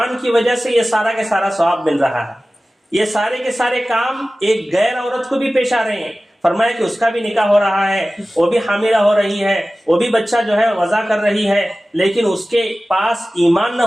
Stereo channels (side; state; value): both; normal; correlation 0.96